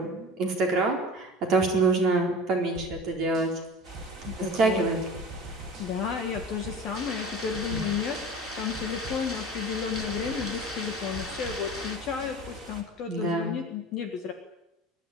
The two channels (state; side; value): normal; both; correlation 0.36